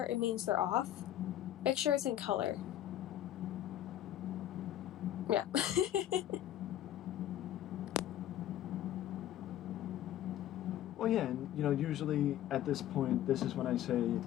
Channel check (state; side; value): quieter; right; 12.1 dB